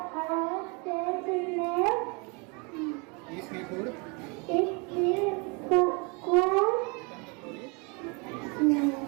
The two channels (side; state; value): left; quieter; 30.9 dB